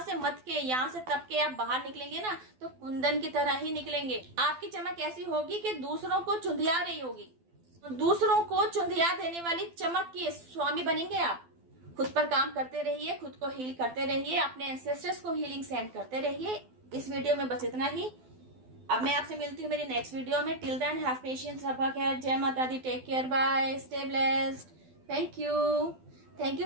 से मत के, यहाँ से तप के आप बाहर निकलेंगे ना तो कुंदन की तरह ही निकलेंगे। आपकी चमक ऐसी होगी कि दूसरों को चुंधिया रही होगी, दूसरों को चुंधिया देने वाली चमक के स्वामी बनेंगे आप। खुद पर काम करते रहिए, खुद को हील करते रहिए, अपने एंसेस्टर्स को हीलिंग सेंड करते रहिए। इस वीडियो में बस इतना ही। अब मैं आपसे मिलती हूँ मेरी नेक्स्ट वीडियो में। टिल देन हैव पेशेंस, रब्बा खैर, जय माता दी, take care, bye, stay blessed, thank you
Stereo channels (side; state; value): left; late; 12 ms